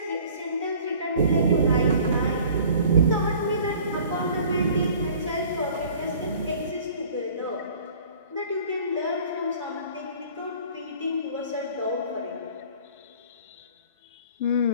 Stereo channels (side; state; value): both; inverted; correlation -0.49